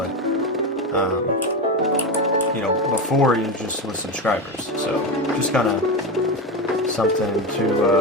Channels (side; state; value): both; normal; correlation 0.17